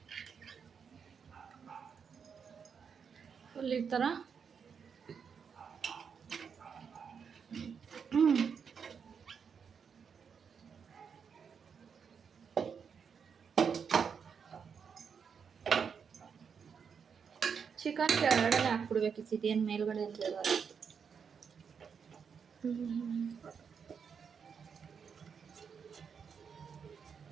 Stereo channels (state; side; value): quieter; left; 6.5 dB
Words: ಫುಲ್ ಈ ಥರ. ಚಿಕನ್ ಕೆಳಗಡೆ ಹಾಕ್ಬಿಡ್ಬೇಕಿತ್ತು, ಇದೇನು ಮೇಲ್ಗಡೆ ಅಂತ ಹೇಳೋದು.